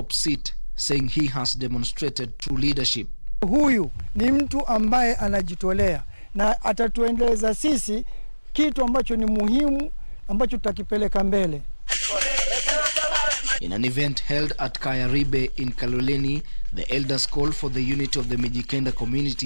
seat, saying he has demonstrated true leadership. Huyu ni mtu ambaye anajitolea na atatuendeleza sisi kitu ambacho ni muhimu ambacho tutakipeleka mbele. In an event held at Kaya Ribe in Kaloleni, the elders called for the unity of the MIJIKENDA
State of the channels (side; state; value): both; inverted; correlation -1.00